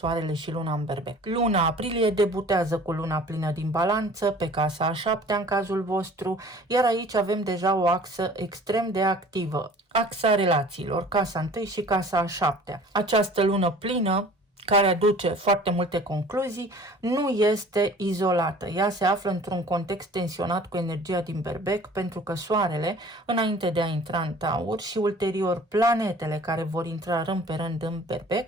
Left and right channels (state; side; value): normal; both; correlation 0.48